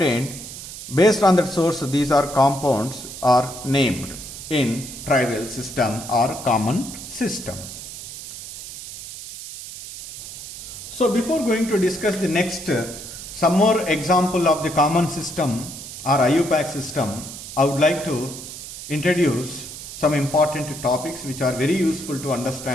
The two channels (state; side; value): noise; right; hiss, 11 dB below the sound